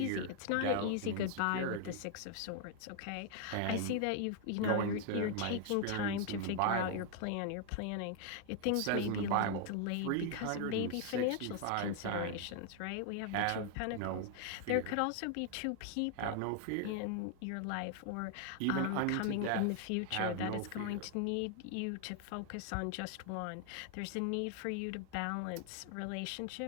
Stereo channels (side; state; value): both; different; correlation 0.00